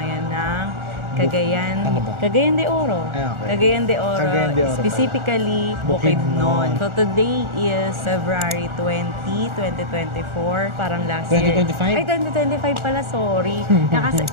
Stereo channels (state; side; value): late; left; 1.4 ms